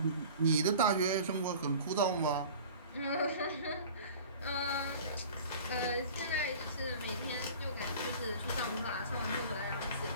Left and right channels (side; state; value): both; inverted; correlation -0.42